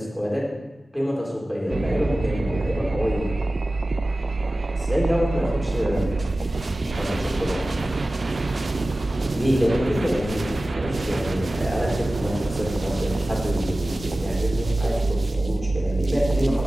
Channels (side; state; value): both; normal; correlation 0.96